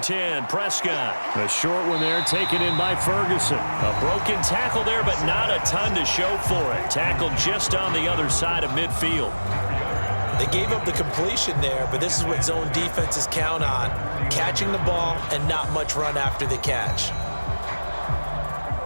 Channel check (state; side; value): inverted; both; correlation -1.00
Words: 10, Prescott. A short one there taken in by Ferguson. A broken tackle there, but not a ton to show for it. Tackled just on the other side of midfield. They gave up the completion there, but this is what zone defenses count on. Catching the ball and not much run after the catch.